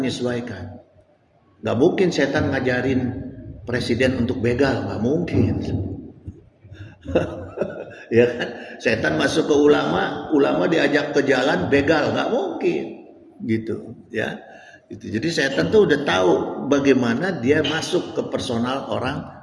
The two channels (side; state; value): both; identical; correlation 1.00